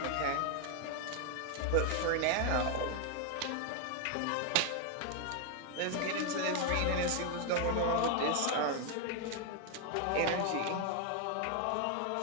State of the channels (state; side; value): different; both; correlation 0.01